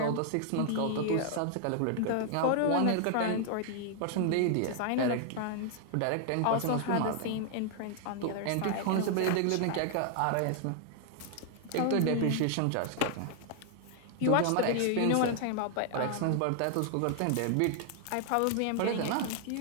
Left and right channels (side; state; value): both; different; correlation 0.00